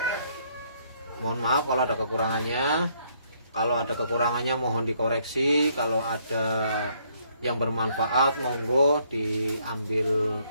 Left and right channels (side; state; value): both; inverted; correlation -0.69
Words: Mohon maaf kalau ada kekurangannya. Kalau ada kekurangannya mohon dikoreksi. Kalau ada yang bermanfaat monggo diambil